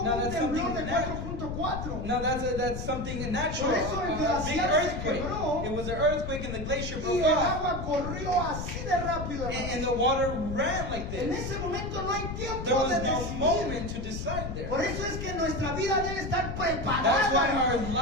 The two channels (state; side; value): noise; left; rumble, 6 dB below the sound